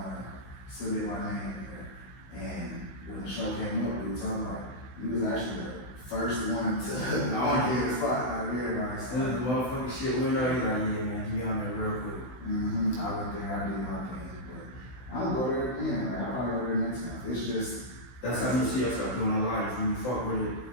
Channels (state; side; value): late; right; 16 ms